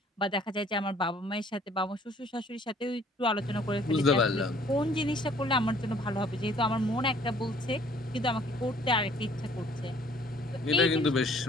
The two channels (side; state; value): both; normal; correlation 0.58